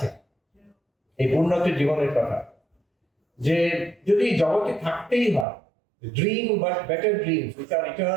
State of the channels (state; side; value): drops out; left; at 5.5 s